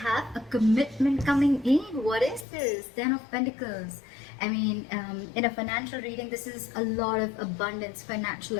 have a commitment coming in. What is this? 10 of Pentacles. I mean, in a financial reading, this is a lot of abundance, financial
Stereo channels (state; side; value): drops out; right; at 2.5 s